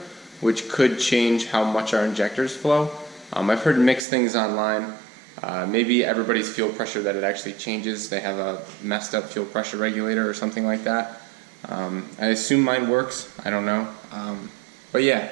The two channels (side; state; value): left; drops out; at 4.0 s